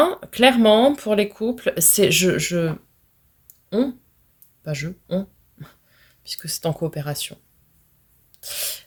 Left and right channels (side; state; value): both; identical; correlation 1.00